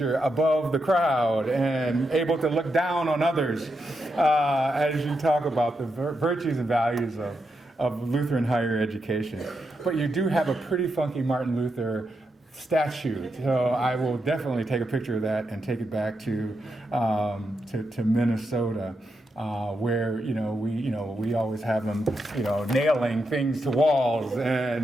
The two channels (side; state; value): both; normal; correlation 0.84